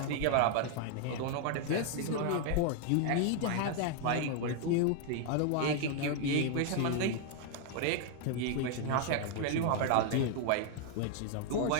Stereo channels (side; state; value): both; different; correlation 0.00